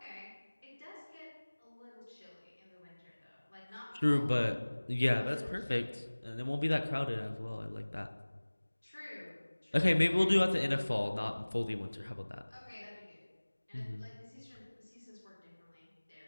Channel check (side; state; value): both; inverted; correlation -1.00